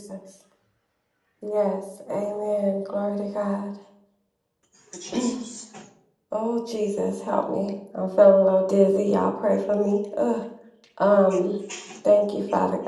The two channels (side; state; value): both; identical; correlation 1.00